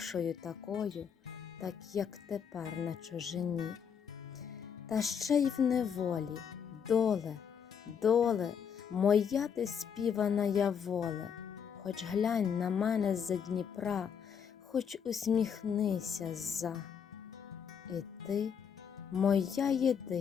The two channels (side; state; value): right; quieter; 7.4 dB